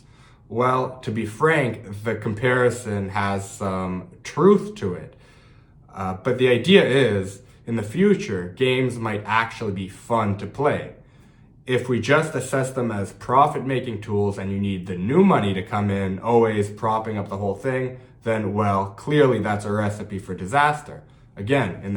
Well, to be frank, the comparison has some truth to it. But the idea is, in the future, games might actually be fun to play. If we just assess them as profit-making tools and you need the new money to come in, always propping up the whole thing, then, well, clearly that's a recipe for disaster. Again, in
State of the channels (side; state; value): both; identical; correlation 1.00